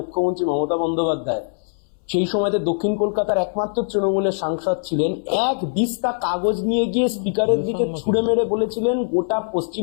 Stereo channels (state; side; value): silent; right; 64 dB below the other